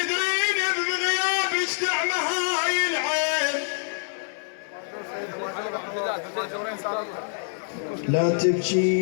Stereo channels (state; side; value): silent; right; 61 dB below the other